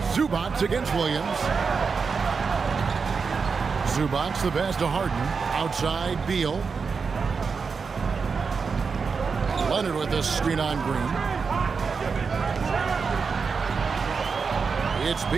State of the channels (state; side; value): quieter; left; 5.2 dB